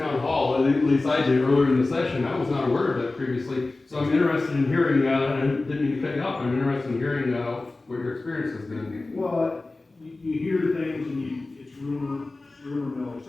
hall, at least I did earlier in the session. I was not aware of that previously. So I'm interested in hearing, and I didn't mean to cut you off, I'm interested in hearing what your experience has been. well, you hear things and it's rumor mill, et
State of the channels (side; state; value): right; quieter; 3.2 dB